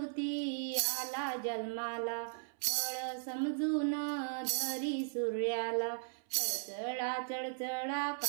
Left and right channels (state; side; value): silent; left; 53 dB below the other